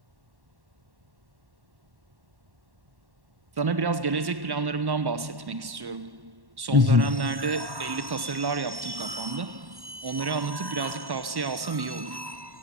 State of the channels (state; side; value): late; left; 1.1 ms